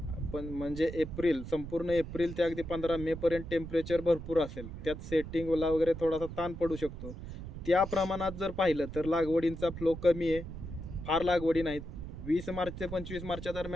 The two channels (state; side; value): noise; right; rumble, 10 dB below the sound